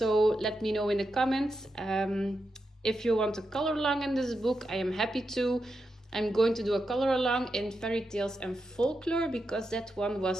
let me know in the comments. If you want a color along in this book, I am happy to. I'm going to do a color along in Fairy Tales and Folklore because that one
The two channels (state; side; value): normal; both; correlation 0.87